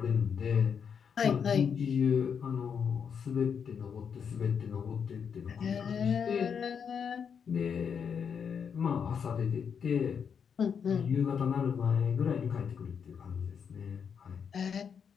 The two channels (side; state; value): right; quieter; 7.0 dB